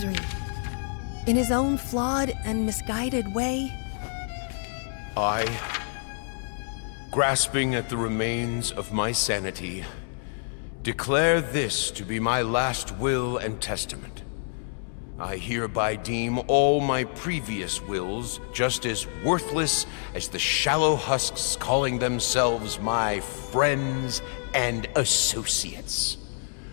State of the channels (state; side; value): silent; right; 60 dB below the other